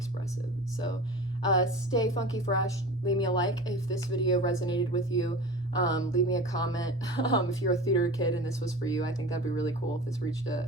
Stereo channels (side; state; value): both; normal; correlation 0.35